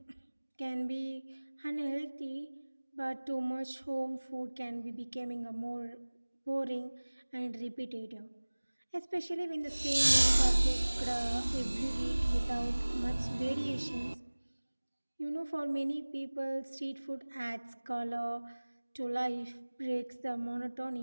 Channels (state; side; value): inverted; both; correlation -1.00